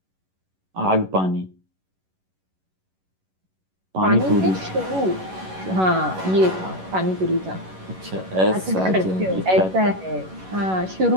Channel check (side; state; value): left; late; 11 ms